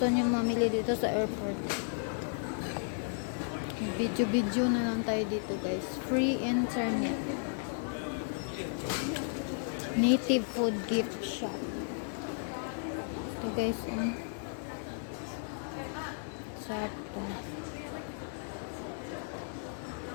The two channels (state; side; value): silent; right; 55 dB below the other